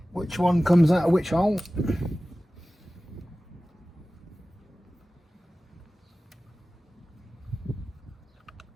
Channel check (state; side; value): normal; both; correlation 0.97